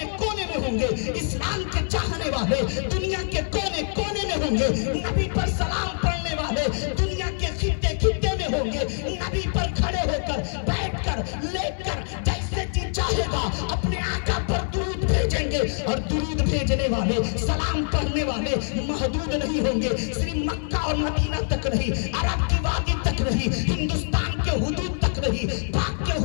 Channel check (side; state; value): right; silent; 62 dB below the other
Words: کونے میں ہوں گے، اسلام کے چاہنے والے دنیا کے کونے کونے میں ہوں گے، نبی پر سلام پڑھنے والے دنیا کے خطے خطے میں ہوں گے. نبی پر کھڑے ہو کر، بیٹھ کر، لیٹ کر، جیسے جی چاہے گا اپنے آقا پر درود بھیجیں گے. اور درود بھیجنے والے، سلام پڑھنے والے محدود نہیں ہوں گے، صرف مکہ اور مدینہ تک نہیں، عرب کی وادی تک نہیں، ہندوستان کے حدود تک نہیں، پاک کے